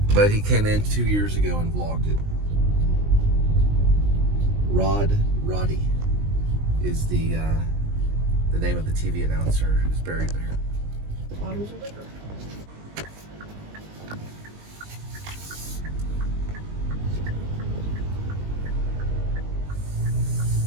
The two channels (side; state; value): left; late; 19 ms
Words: But he came in 2 years ago and vlogged it. Roddy is the name of the TV announcer who's buried there. Bottles of liquor.